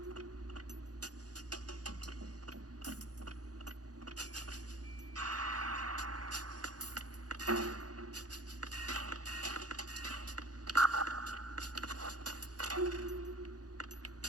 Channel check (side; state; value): left; late; 0.68 ms